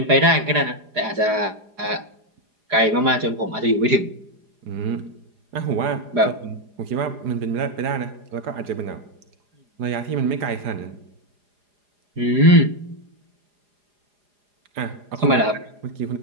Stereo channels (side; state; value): left; late; 4.9 ms